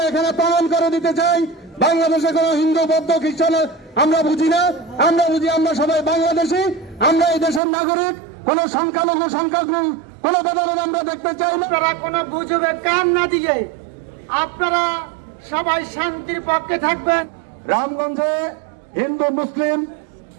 এখানে প্রমাণ করে দিতে চাই, বাংলাদেশে কোন হিন্দু, বৌদ্ধ, খ্রিস্টান আমরা বুঝি না। আমরা বুঝি আমরা সবাই বাংলাদেশি, আমরা এই দেশের নাগরিক। কোন সংখ্যালঘু সংখ্যাগুরু কোন ভেদাভেদ আমরা দেখতে চাই না। আপনারা কোন গুজবে কান না দিয়ে আপনারা সবাই শান্তির পক্ষে থাকবেন। রামগঞ্জে হিন্দু মুসলিম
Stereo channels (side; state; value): left; drops out; at 7.6 s